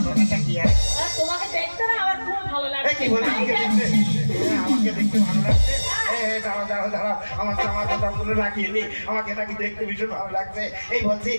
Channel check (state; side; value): inverted; both; correlation -1.00